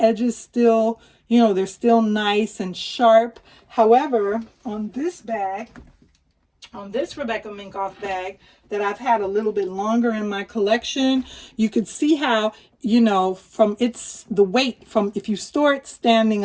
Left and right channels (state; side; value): identical; both; correlation 1.00